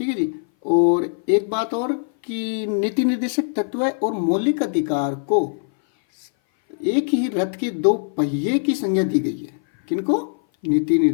है जी। और एक बात और कि नीति निर्देशक तत्व और मौलिक अधिकार को एक ही रथ के दो पहिए की संज्ञा दी गई है। किनको? नीति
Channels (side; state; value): right; silent; 58 dB below the other